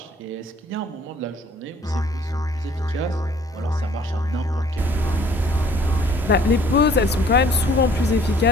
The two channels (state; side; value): normal; both; correlation 0.56